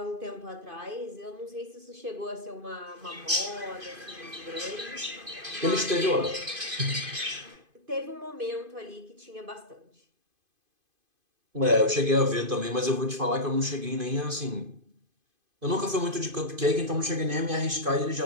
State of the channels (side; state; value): left; late; 2.5 ms